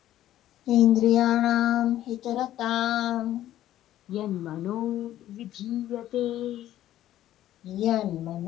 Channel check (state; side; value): quieter; right; 13.0 dB